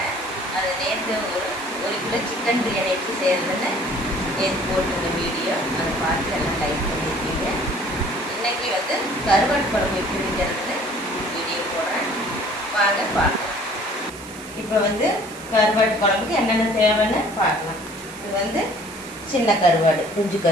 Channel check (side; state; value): right; noise; hiss, 18 dB below the sound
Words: அது நேற்று ஒரு கிலோ சிக்கன் பிரியாணி எப்படி செய்கிறதுன்னு நேற்று போட்டிருந்த வீடியோ அதை பார்த்து எல்லாம் லைக் பண்ணியிருக்கீங்க. இன்றைக்கி கருவாட்டு குழம்பு எப்படி வைக்கிறதுன்னு வீடியோ போடுறேன், வாங்க பார்க்கலாம். இப்போ கருவாட்டு குழம்புக்கு என்னென்ன தேவைன்னு பார்க்கலாம். இது சின்ன கருவாடு, குஞ்சு